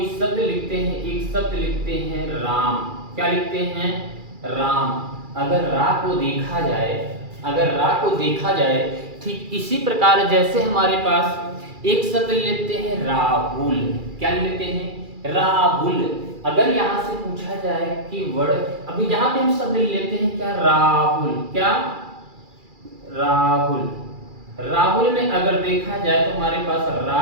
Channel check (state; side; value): late; left; 2.4 ms